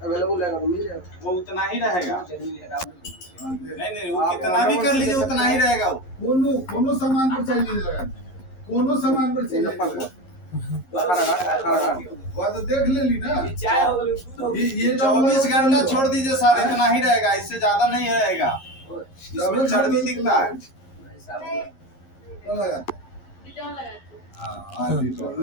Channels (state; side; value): late; right; 11 ms